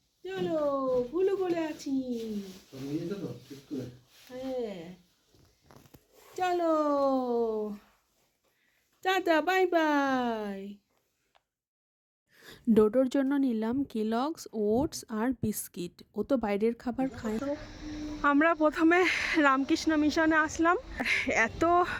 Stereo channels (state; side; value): identical; both; correlation 1.00